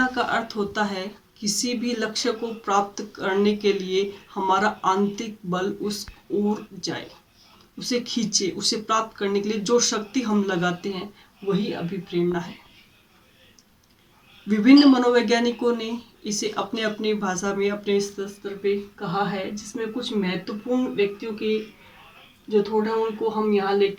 का अर्थ होता है किसी भी लक्ष्य को प्राप्त करने के लिए हमारा आंतरिक बल उस ओर जाए, उसे खींचे, उसे प्राप्त करने के लिए जो शक्ति हम लगाते हैं वही अभिप्रेरणा है। विभिन्न मनोवैज्ञानिकों ने इसे अपने अपनी भाषा में अपने स्तर पे कहा है, जिसमें कुछ महत्वपूर्ण व्यक्तियों के जो थोड़ा उनको हम यहाँ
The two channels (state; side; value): identical; both; correlation 1.00